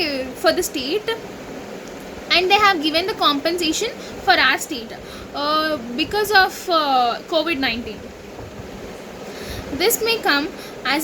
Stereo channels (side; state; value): both; identical; correlation 1.00